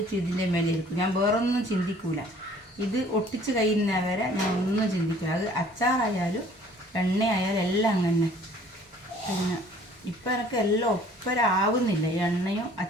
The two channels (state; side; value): normal; both; correlation 0.54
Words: ഇതിൻ്റെ മേലെ ഇരിക്കും. ഞാൻ വേറൊന്നും ചിന്തിക്കൂല. ഇത് ഒട്ടിച്ച് കഴിയുന്നവരെ ഞാൻ ഒന്നും ചിന്തിക്കില്ല. അത് അച്ചാറായാലും എണ്ണയായാലും എല്ലാം അങ്ങനെ. പിന്നെ ഇപ്പം എനിക്ക് എല്ലാം ഒപ്പരാവുന്നില്ല, എണ്ണയും